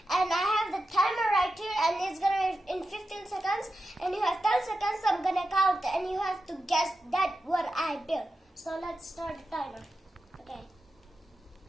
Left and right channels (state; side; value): normal; both; correlation 0.91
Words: and I have the timer right here and it's gonna be in 15 seconds and you have 10 seconds. I'm gonna count and you have to guess that what I built. So let's start the timer. Okay.